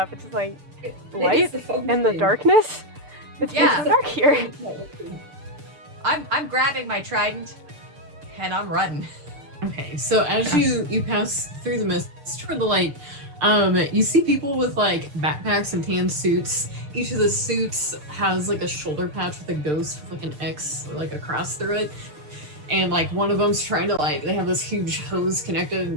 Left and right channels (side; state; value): left; late; 6.7 ms